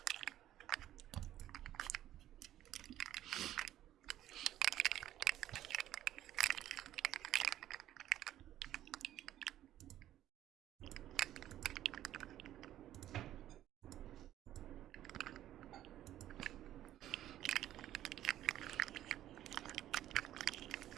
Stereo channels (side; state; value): left; quieter; 12.8 dB